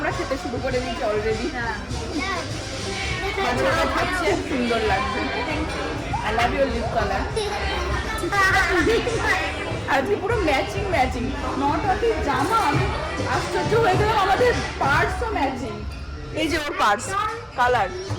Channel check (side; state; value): both; identical; correlation 1.00